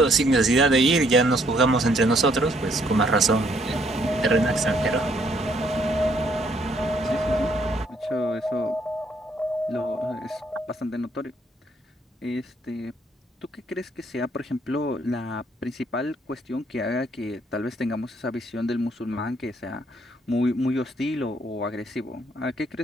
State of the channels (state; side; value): normal; both; correlation 0.67